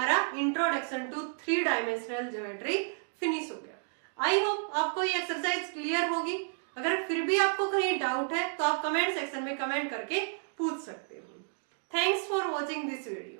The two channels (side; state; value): left; silent; 57 dB below the other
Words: introduction to 3 dimensional geometry finish हो गया। आई होप आपको ये एक्सरसाइज क्लियर होगी। अगर फिर भी आपको कहीं डाउट है तो आप कमेंट सेक्शन में कमेंट करके पूछ सकते हो। Thanks for watching this video.